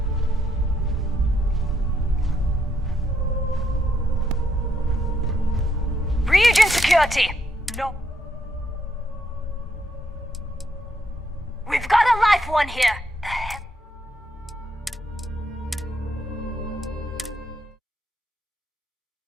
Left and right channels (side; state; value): both; normal; correlation 0.76